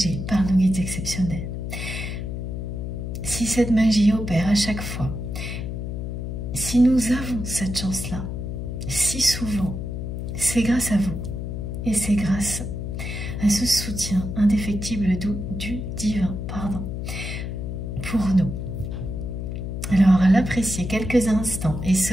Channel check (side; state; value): left; noise; hum, 5 dB below the sound